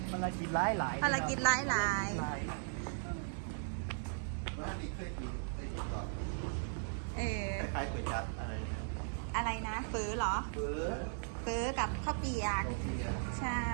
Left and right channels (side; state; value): left; silent; 53 dB below the other